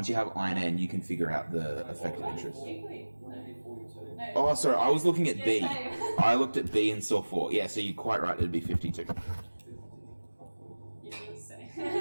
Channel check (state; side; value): inverted; both; correlation -1.00